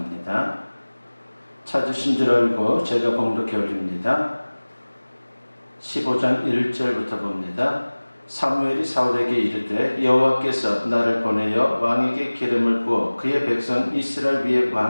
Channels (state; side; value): inverted; both; correlation -1.00